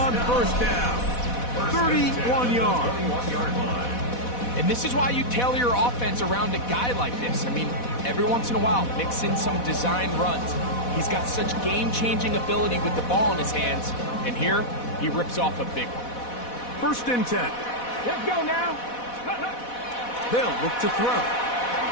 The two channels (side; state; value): right; late; 4.1 ms